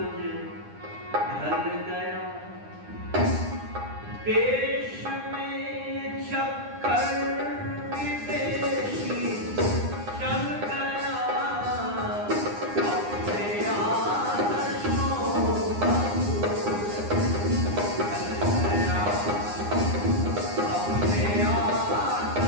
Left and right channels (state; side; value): late; left; 9.8 ms